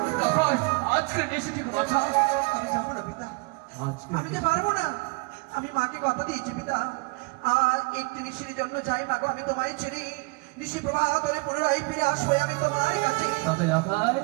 আজকের নিশি ঠিক বাঁচা। আমি যাবো না পিতা, আমি যে পারবো না। আমি মাকে কথা দিয়েছি পিতা, আর একটি নিশির জন্য যাই মা গো, আমি তোমায় ছেড়ে নিশি প্রবাহ করে পুনরায় ফিরে আসবো আমি তোমার কাছে। তবে লগাই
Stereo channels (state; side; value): quieter; left; 28.3 dB